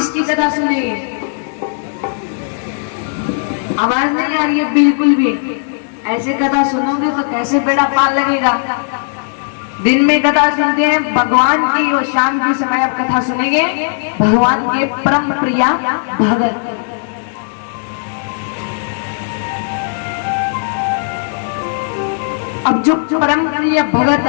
कथा सुनेंगे? आवाज नहीं आ रही है बिल्कुल भी। ऐसे कथा सुनोगे तो कैसे बेड़ा पार लगेगा? दिन में कथा सुनते हैं भगवान की और शाम के समय आप कथा सुनेंगे भगवान के परम प्रिया भगत। अब जो परम प्रिय भगत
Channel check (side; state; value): right; silent; digital silence